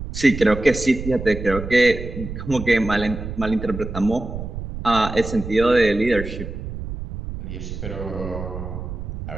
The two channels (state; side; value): noise; right; rumble, 8 dB below the sound